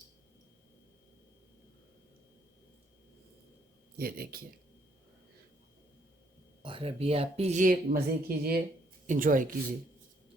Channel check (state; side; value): normal; both; correlation 0.69